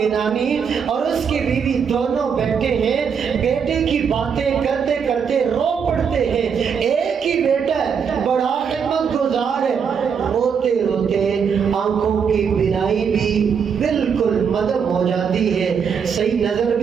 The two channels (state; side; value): quieter; left; 6.8 dB